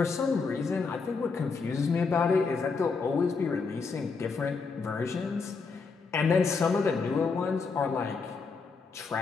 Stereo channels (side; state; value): right; quieter; 4.7 dB